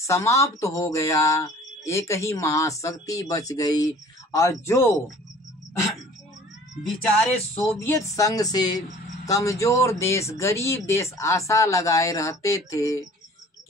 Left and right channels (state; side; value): normal; both; correlation 0.49